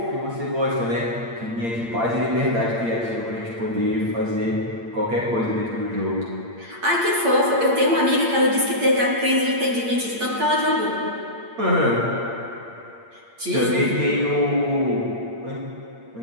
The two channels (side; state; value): left; late; 8.7 ms